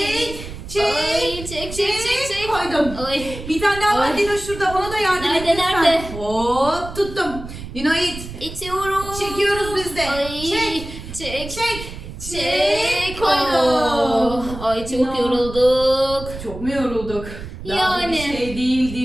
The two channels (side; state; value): right; noise; rumble, 11 dB below the sound